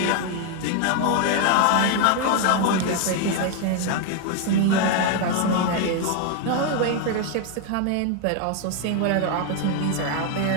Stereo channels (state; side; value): different; both; correlation 0.00